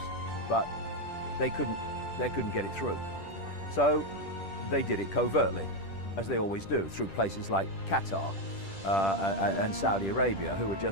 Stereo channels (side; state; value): right; late; 10 ms